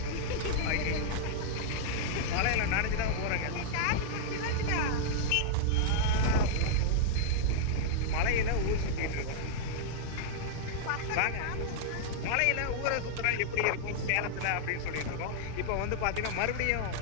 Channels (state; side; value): different; both; correlation -0.02